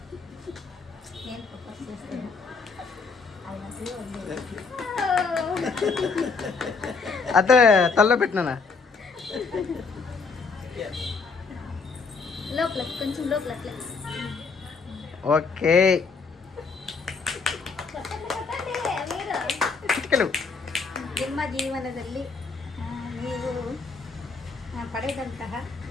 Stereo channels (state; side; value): quieter; right; 4.7 dB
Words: అదే తల్లో పెట్టినా లోపల కొంచెం లోపల ఓకే ನಿಮ್ಮ ಜೀವನದಲ್ಲಿ ನೀವು ಪಡೆದಂತಹ